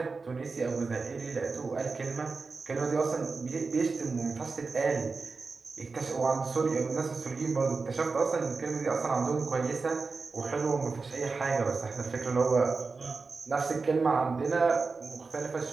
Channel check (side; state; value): left; quieter; 4.3 dB